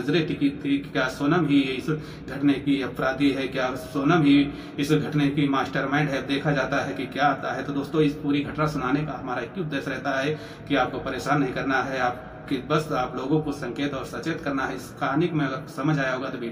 टिकी थी कि क्या सोनम ही इस घटने की अपराधी है, क्या सोनम ही इस घटने की मास्टरमाइंड है। देखा जाता है कि क्या आता है। तो दोस्तों इस पूरी घटना सुनाने का हमारा एक ही उद्देश्य रहता है कि आपको परेशान नहीं करना है, आप कि बस आप लोगों को संकेत और सचेत करना है। इस कहानी में अगर समझ आया होगा तो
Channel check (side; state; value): both; identical; correlation 1.00